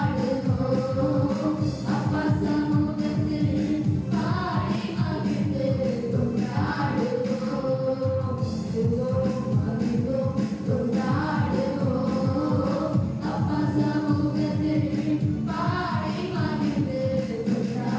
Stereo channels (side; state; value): both; identical; correlation 1.00